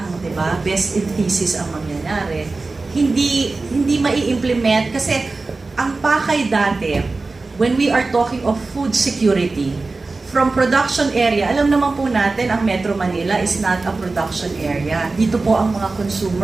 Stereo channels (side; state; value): left; quieter; 3.6 dB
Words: di ba? Best in thesis ang mangyayari. Hindi mai-implement kasi ang pakay dati, when we are talking of food security, from production area, alam naman po natin, ang Metro Manila is not a production area. Dito po ang mga